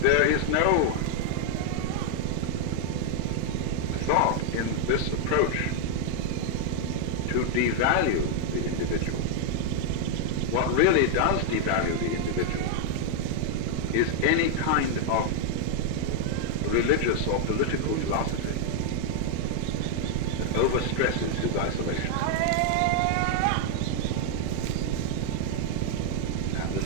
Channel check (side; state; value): both; different; correlation 0.00